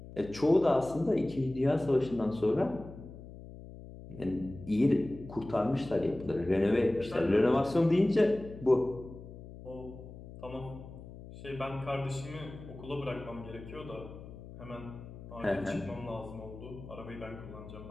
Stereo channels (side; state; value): left; noise; hum, 15 dB below the sound